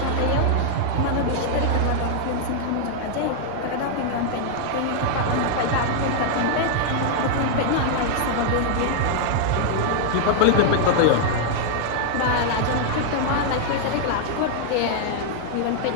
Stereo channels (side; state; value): both; different; correlation -0.01